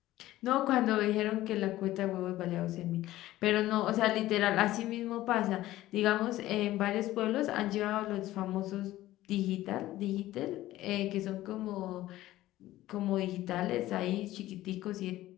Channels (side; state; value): right; quieter; 15.6 dB